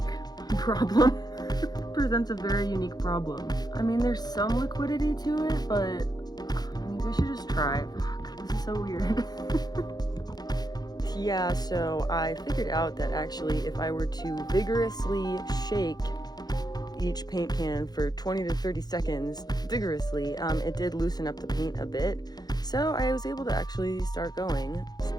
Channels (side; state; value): right; late; 0.19 ms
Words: problem. Presents a very unique problem. I mean, there's some liquidity to it, but maybe I should just try. Fuck, this is so weird. Yeah, so I figured out that actually if I were to vigorously shake each paint can for 20 to 30 seconds, vigorously, it did loosen up the paint a bit. So I was able to actually start going. It's